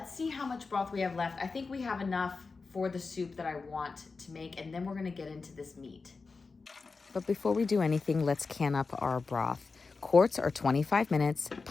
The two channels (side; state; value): right; quieter; 4.3 dB